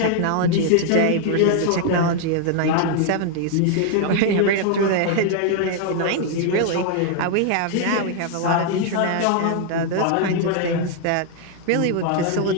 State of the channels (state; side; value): different; both; correlation 0.00